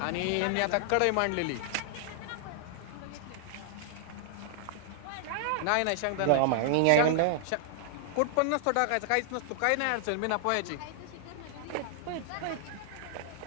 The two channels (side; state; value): both; different; correlation -0.01